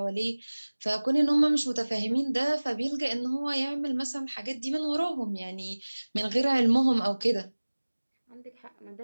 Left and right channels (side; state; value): both; inverted; correlation -1.00